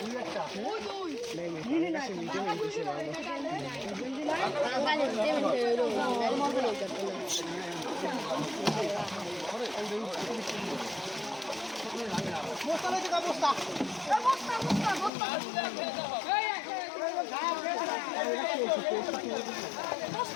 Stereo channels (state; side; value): drops out; right; at 15.1 s